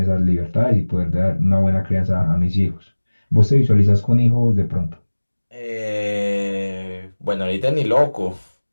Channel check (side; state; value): both; inverted; correlation -1.00